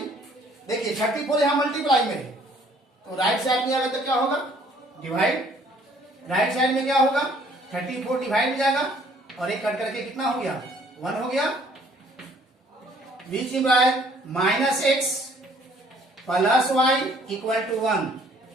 देखिए 34 यहां मल्टीप्लाई में है तो राइट साइड में आएगा तो क्या होगा डिवाइड, राइट साइड में क्या होगा 34 डिवाइड हो जाएगा और एक कट करके कितना हो गया 1 हो गया, which implies minus x plus y equal to 1।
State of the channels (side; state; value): both; normal; correlation 0.60